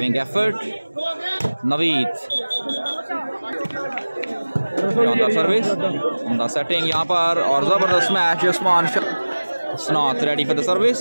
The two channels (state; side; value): inverted; both; correlation -1.00